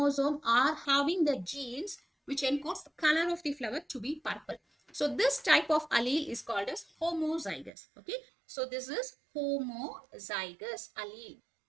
are having the genes which encodes the color of the flower to be purple. So this type of allele is called as homozygous. Okay. So this is homozygous allele.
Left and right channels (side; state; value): left; drops out; at 7.7 s